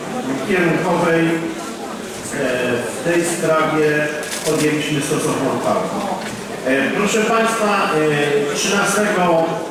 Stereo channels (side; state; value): both; identical; correlation 1.00